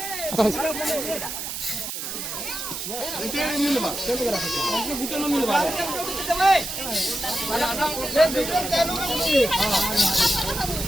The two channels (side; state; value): right; noise; hiss, 5 dB below the sound